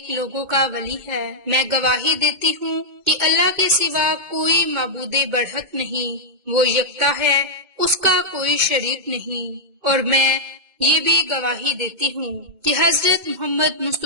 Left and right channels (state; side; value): late; left; 2.1 ms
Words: لوگوں کا ولی ہے۔ میں گواہی دیتی ہوں کہ اللہ کے سوا کوئی معبود برحق نہیں، وہ یکتا ہے، اس کا کوئی شریک نہیں۔ اور میں یہ بھی گواہی دیتی ہوں کہ حضرت محمد